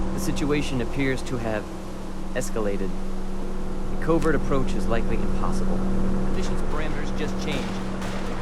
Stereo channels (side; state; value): both; identical; correlation 1.00